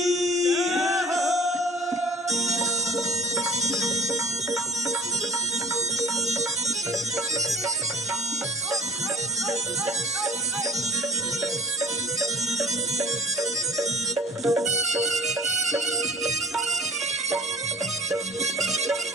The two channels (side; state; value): both; normal; correlation 0.45